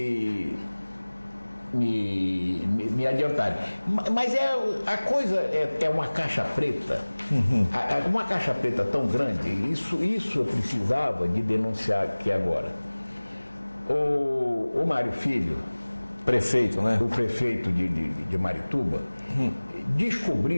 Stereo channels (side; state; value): both; inverted; correlation -1.00